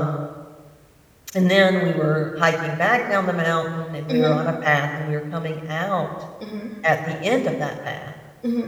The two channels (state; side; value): identical; both; correlation 1.00